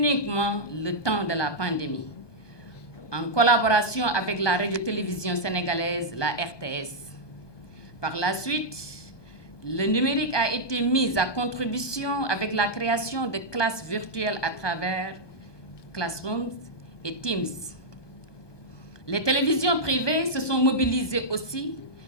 le temps de la pandémie, en collaboration avec la radio-télévision sénégalaise, la RTS. Par la suite, le numérique a été mis à contribution avec la création de classes virtuelles à travers Classrooms et Teams. Les télévisions privées se sont mobilisées aussi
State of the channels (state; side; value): late; right; 1.2 ms